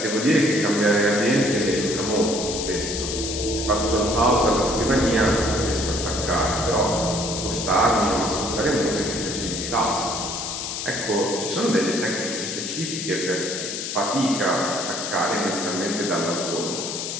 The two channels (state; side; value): noise; left; hiss, 5 dB below the sound